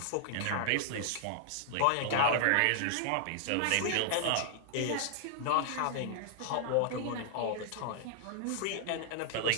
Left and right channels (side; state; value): both; different; correlation 0.00